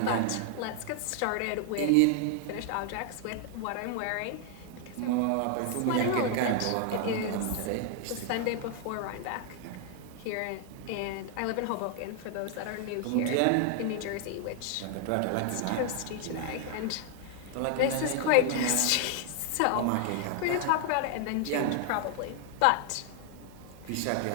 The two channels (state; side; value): different; both; correlation 0.00